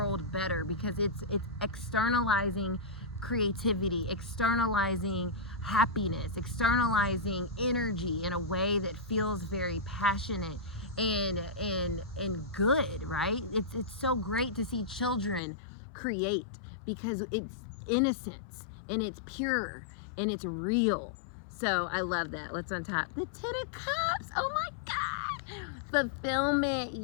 better because it's externalizing creativity, externalizing happiness, externalizing energy in a way that feels very passionate and good, right? It's so great to see children create, because it's innocence and it's pure and it's real. So I love that. Let's untop the 10 of Cups. Oh my God. Fulfillment.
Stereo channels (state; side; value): drops out; right; at 15.4 s